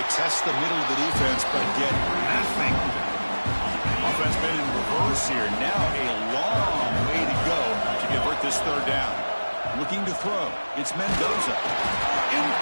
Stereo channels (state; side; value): inverted; both; correlation -1.00